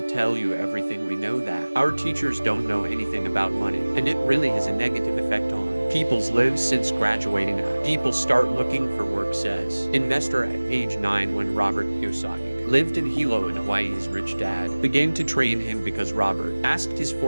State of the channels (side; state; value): both; inverted; correlation -1.00